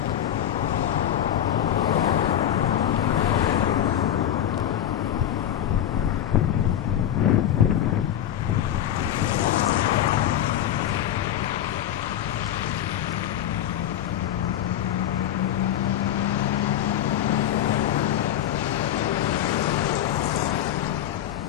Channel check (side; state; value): right; quieter; 11.2 dB